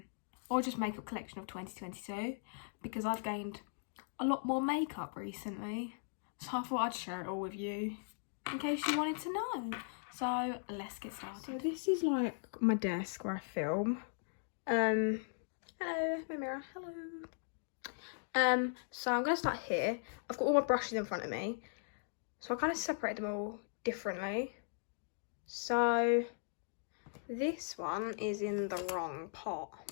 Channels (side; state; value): right; silent; digital silence